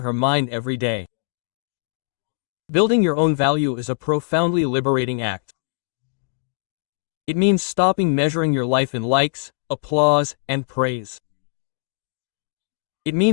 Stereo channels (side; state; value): right; silent; digital silence